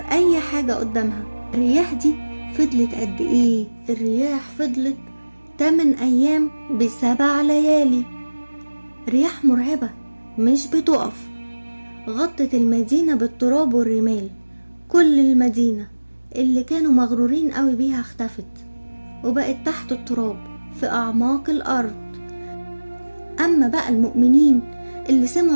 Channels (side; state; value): both; inverted; correlation -1.00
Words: حاجة قدامها. الرياح دي فضلت قد إيه؟ الرياح فضلت 8 أيام ب7 ليالي. رياح مرعبة مش بتقف، غطت المدينة بالتراب والرمال. كل المدينة اللي كانوا مغرورين قوي بيها اختفت وبقت تحت التراب في أعماق الأرض. أما بقى المؤمنين اللي